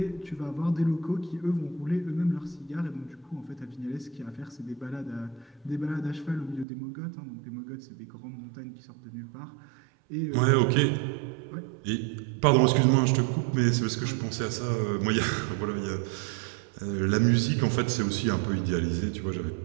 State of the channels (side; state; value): left; drops out; at 6.7 s